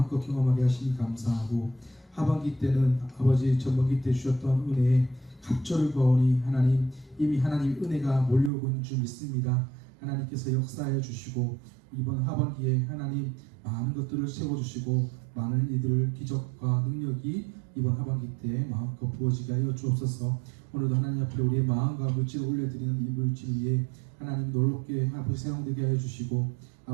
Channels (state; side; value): drops out; left; at 8.5 s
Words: 경험하게 하시니 감사하고 하반기 때는 아버지 전반기 때 주셨던 은혜에 갑절을 거오니 하나님 이미 하나님 은혜가 몰려오고 있는 줄 믿습니다. 하나님께서 역사해 주시고 이번 하반기에 하나님 많은 것들을 세워주시고 많은 이들을 기적과 능력이 이번 하반기 때 마음껏 부어지게 하여 주옵소서. 오늘도 하나님 앞에 우리의 마음과 물질을 올려드리는 이 물질 위에 하나님 놀랍게 아버지 사용되게 하여 주시고